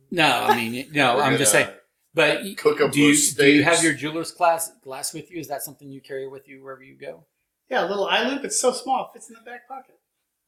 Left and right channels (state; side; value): identical; both; correlation 1.00